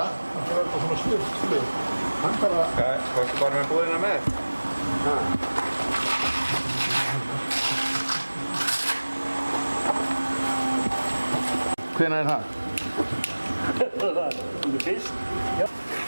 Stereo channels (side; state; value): both; inverted; correlation -1.00